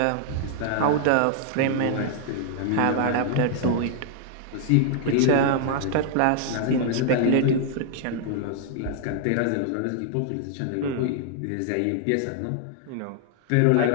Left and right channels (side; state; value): both; different; correlation 0.00